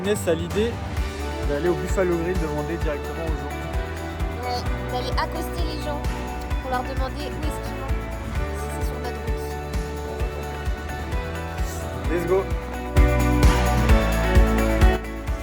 Inès a l'idée d'aller au Buffalo Grill demander directement aux gens. Ouais, d'aller accoster les gens pour leur demander où est-ce qu'ils vont, si c'est sur notre route. Let's go.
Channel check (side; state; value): both; identical; correlation 1.00